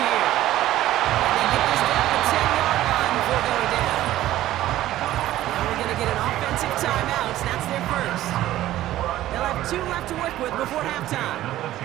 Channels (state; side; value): quieter; left; 14.3 dB